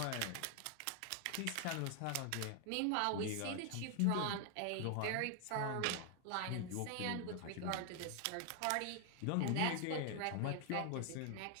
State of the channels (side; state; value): both; different; correlation 0.00